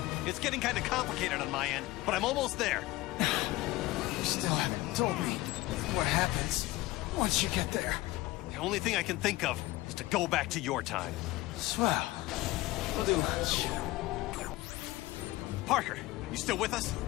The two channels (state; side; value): quieter; right; 18.5 dB